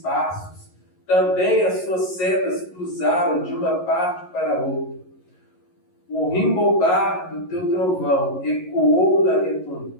Também as suas setas cruzaram de uma parte para outra. O rimbobar do teu trovão ecoou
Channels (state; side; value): late; right; 11 ms